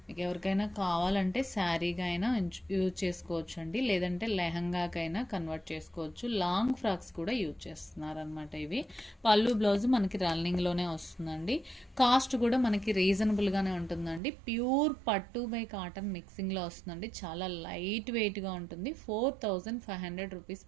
మీకు ఎవరికైనా కావాలంటే శారీగా అయినా యూజ్ చేసుకోవచ్చు అండి, లేదంటే లెహంగాకైనా కన్వర్ట్ చేసుకోవచ్చు. లాంగ్ ఫ్రాక్స్ కూడా యూజ్ చేస్తున్నారు అనమాట. ఇవి పళ్ళు బ్లౌజ్ మనకి రన్నింగ్లోనే వస్తుందండి. కాస్ట్ కూడా మనకి రీజనబుల్గానే ఉంటుందండి. ప్యూర్ పట్టు బై కాటన్ మిక్సింగ్లో వస్తుందండి. చాలా లైట్ వెయిట్గా ఉంటుంది. 4,500 రూపీస్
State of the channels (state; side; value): drops out; left; at 14.2 s